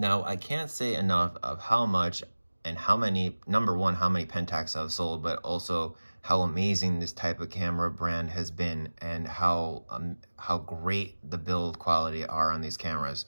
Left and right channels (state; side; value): inverted; both; correlation -1.00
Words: I can't say enough of how much and how many, number one, how many Pentax I've sold, but also how amazing this type of camera brand has been and how great the build quality are on these cameras.